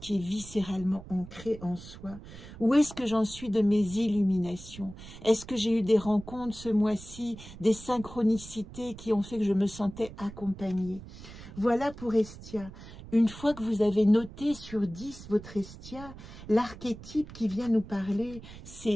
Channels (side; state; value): right; noise; rumble, 15 dB below the sound